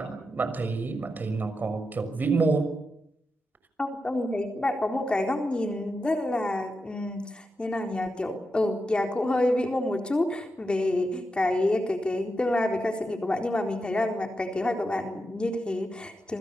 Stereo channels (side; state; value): both; normal; correlation 0.87